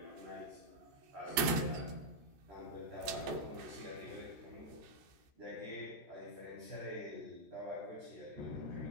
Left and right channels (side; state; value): left; late; 14 ms